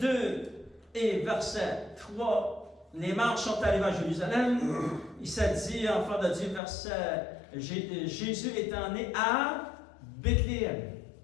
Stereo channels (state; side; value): drops out; right; at 6.6 s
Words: et verset 3, les marches sont arrivées à Jérusalem. Il s'est dit, enfant de Dieu, verset, Jésus étant né à Bethléem.